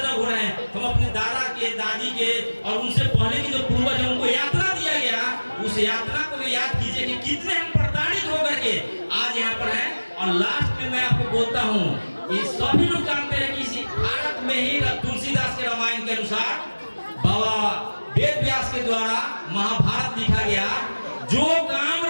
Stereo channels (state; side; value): inverted; both; correlation -1.00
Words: हो रहे हैं? हम अपने दादा के, दादी के और उनसे पहले के जो पूर्वज हैं उनको यात्रा दिया गया, उस यात्रा को भी याद कीजिए कि कितने हम प्रताड़ित होकर के आज यहाँ पर हैं। और लास्ट में मैं आपको बोलता हूँ, ये सभी लोग जानते हैं कि इसी भारत में ही तुलसीदास के रामायण के अनुसार बाबा वेद व्यास के द्वारा महाभारत लिखा गया। जो काम